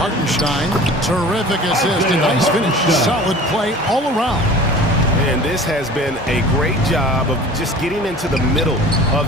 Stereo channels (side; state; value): both; normal; correlation 0.43